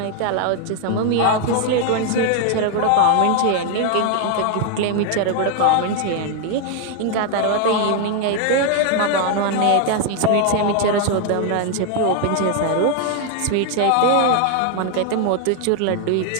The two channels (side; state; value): both; different; correlation 0.00